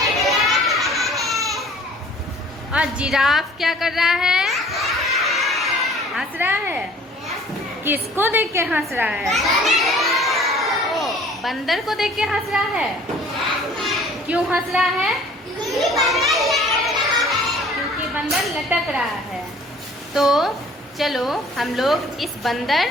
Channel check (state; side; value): normal; both; correlation 0.52